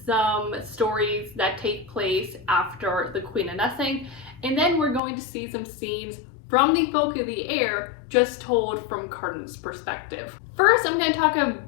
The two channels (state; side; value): drops out; right; at 5.0 s